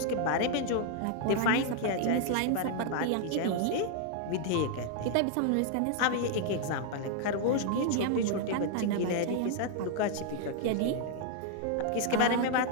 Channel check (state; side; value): different; both; correlation 0.00